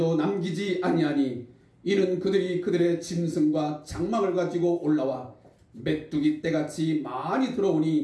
남기지 아니하니 이는 그들이 그들의 짐승과 장막을 가지고 올라와 메뚜기 떼같이 많이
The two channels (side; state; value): both; identical; correlation 1.00